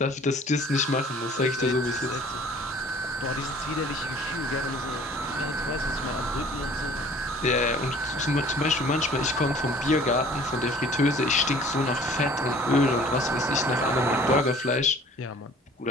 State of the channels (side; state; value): both; normal; correlation 0.51